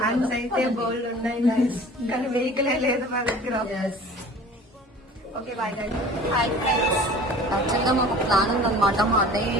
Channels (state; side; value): normal; both; correlation 0.44